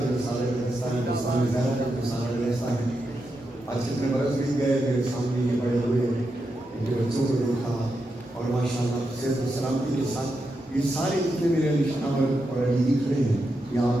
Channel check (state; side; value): normal; both; correlation 0.86